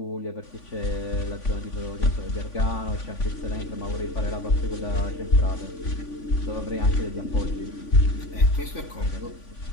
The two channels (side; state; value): right; late; 3.5 ms